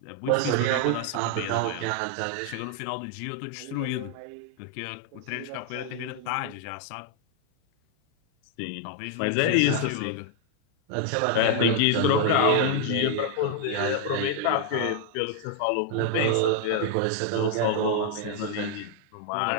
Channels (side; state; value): both; different; correlation 0.00